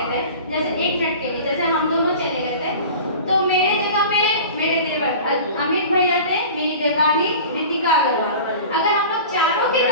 थे, जैसे 1 मिनट के लिए जैसे हम दोनों चले गए थे, तो मेरे जगह पे मेरे देवर अमित भैया थे, मेरी देवरानी रितिका अग्रवाल। अगर हम लोग चारों की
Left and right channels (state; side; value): inverted; both; correlation -0.38